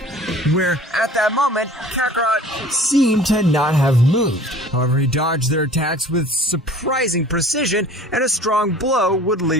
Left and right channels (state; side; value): normal; both; correlation 0.46